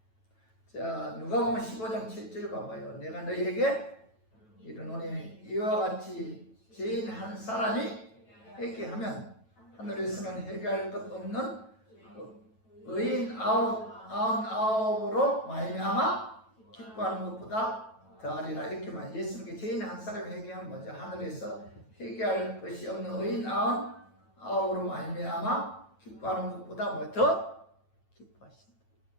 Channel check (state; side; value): late; right; 9.1 ms